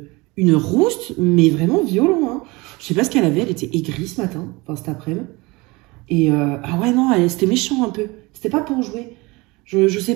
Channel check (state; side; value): quieter; left; 23.9 dB